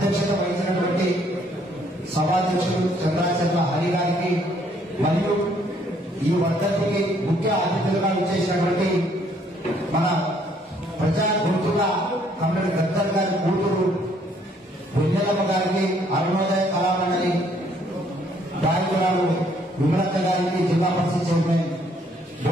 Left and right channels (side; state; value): both; normal; correlation 0.65